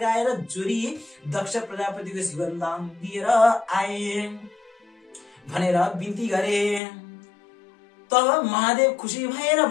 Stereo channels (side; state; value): right; drops out; at 6.8 s